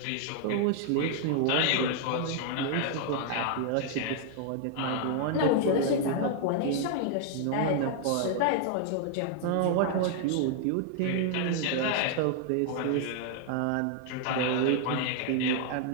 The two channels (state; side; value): different; both; correlation 0.00